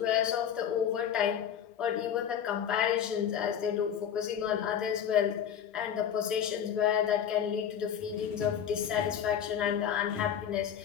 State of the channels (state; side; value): quieter; right; 8.8 dB